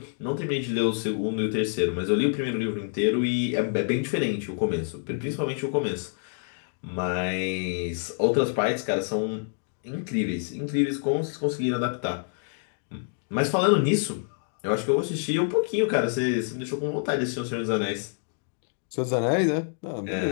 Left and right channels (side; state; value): right; silent; digital silence